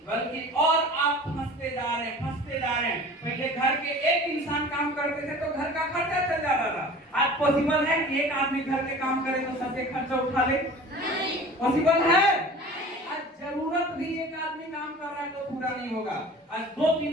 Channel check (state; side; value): normal; both; correlation 0.41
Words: बल्कि और आप फंसते जा रहे हैं, फंसते जा रहे हैं। पहले घर के एक इंसान काम करते थे तो घर का खर्चा चल जाता था। आज पॉसिबल है कि एक आदमी घर के काम करे तो सबके खर्चा उठा ले? नहीं पॉसिबल है। आज जरूरत भी एक आदमी काम कर रहा है तो पूरा नहीं होगा। आज